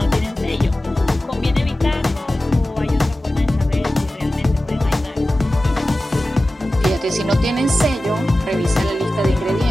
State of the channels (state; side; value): normal; both; correlation 0.95